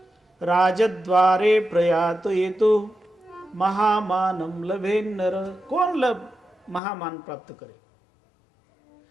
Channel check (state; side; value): drops out; right; at 6.8 s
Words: રાજદ્વારે પ્રયાતો એ તો મહામાનમ લભે નર. કોણ મહામાન પ્રાપ્ત કરે?